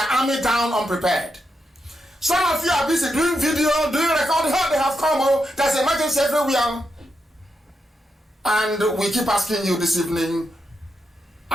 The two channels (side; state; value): both; normal; correlation 0.85